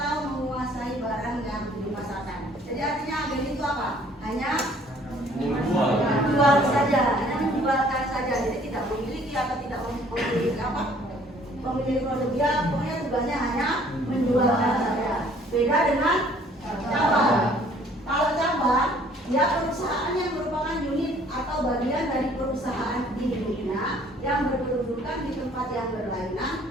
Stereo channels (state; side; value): normal; both; correlation 0.58